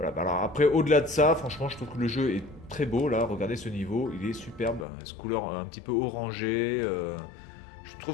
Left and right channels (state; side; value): drops out; right; at 4.9 s